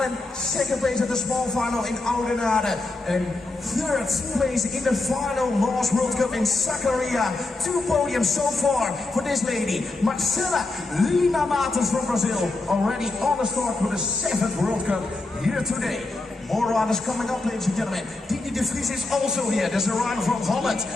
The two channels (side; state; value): right; quieter; 3.1 dB